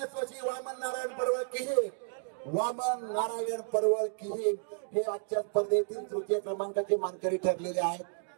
वामन नारायण परवळ किही. वामन नारायण परवळ किही हे आजच्या स्पर्धेतील तृतीय क्रमांकाचे मानकरी ठरलेले आहेत.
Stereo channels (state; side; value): silent; left; digital silence